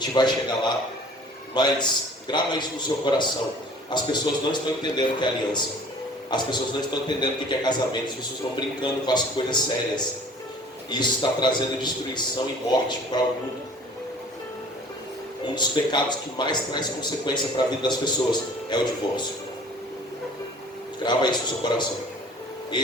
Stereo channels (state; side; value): normal; both; correlation 0.49